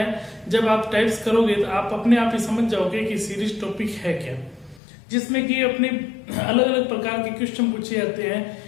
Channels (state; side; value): drops out; right; at 4.8 s